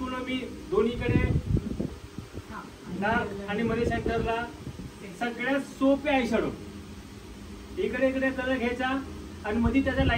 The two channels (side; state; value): both; identical; correlation 1.00